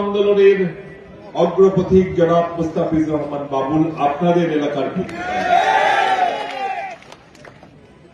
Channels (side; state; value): both; identical; correlation 1.00